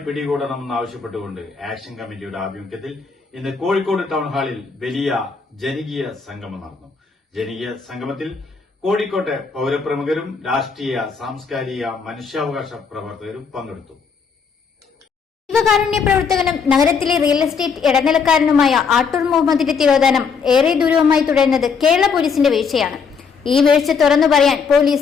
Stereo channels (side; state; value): right; quieter; 5.7 dB